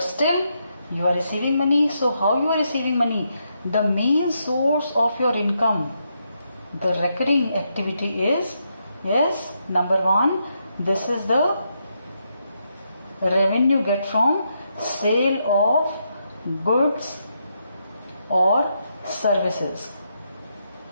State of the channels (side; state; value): both; inverted; correlation -0.80